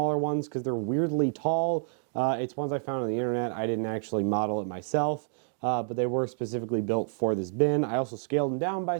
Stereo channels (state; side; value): silent; left; digital silence